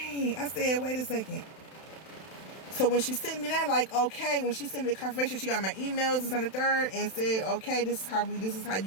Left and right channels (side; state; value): right; late; 31 ms